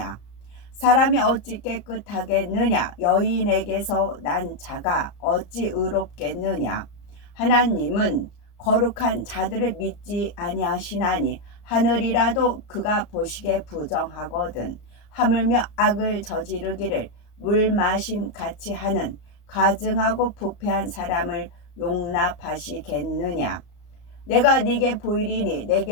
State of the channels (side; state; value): right; late; 34 ms